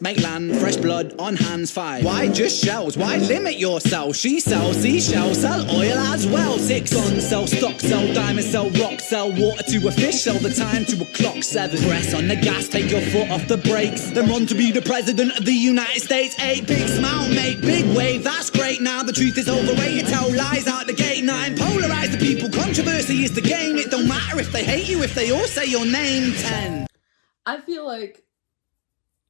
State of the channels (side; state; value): right; silent; digital silence